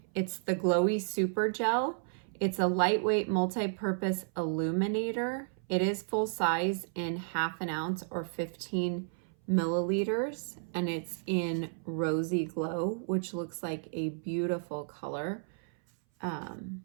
It's the Glowy Super Gel. It's a lightweight multi-purpose illuminator. It is full size in 1/2 ounce or 15 milliliters, and it's in Rosy Glow, which looks like a beautiful color.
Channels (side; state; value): left; silent; 56 dB below the other